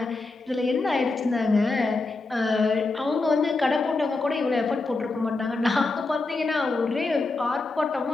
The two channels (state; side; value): quieter; right; 3.4 dB